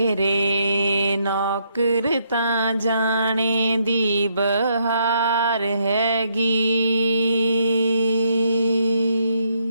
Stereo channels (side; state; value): both; inverted; correlation -0.74